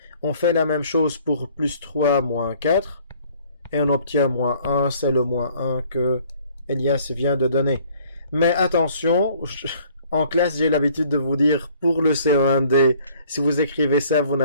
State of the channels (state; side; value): inverted; both; correlation -0.57